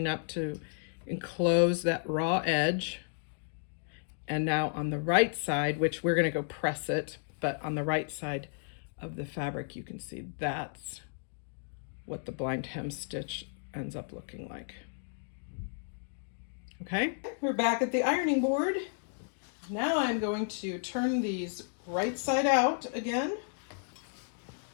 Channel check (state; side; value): silent; right; digital silence